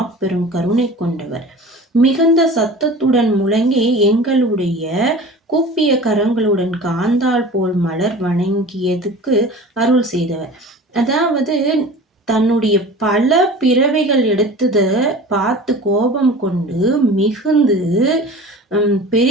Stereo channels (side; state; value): both; normal; correlation 0.39